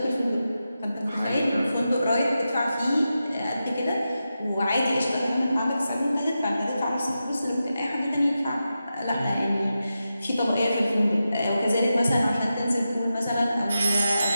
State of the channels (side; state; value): both; inverted; correlation -0.90